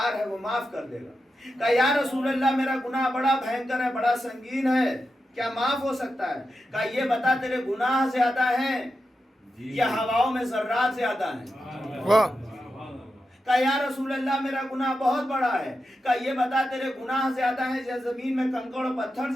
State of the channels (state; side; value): normal; both; correlation 0.89